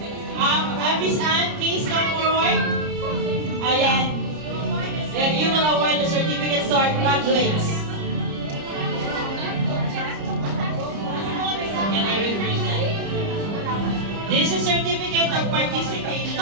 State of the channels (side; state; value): left; late; 30 ms